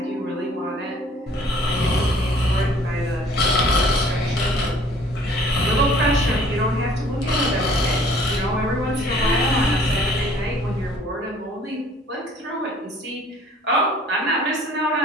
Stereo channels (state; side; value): normal; both; correlation 0.55